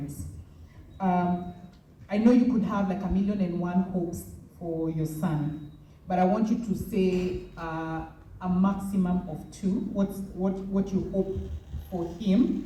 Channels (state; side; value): identical; both; correlation 1.00